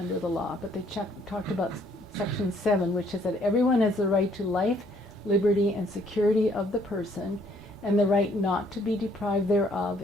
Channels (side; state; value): both; normal; correlation 0.64